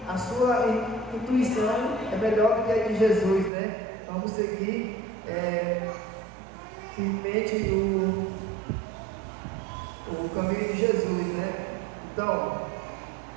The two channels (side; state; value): left; drops out; at 3.5 s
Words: a sua intuição é melhor do que a de Jesus, né? Vamos seguir firmemente o caminho de Jesus, né? Então,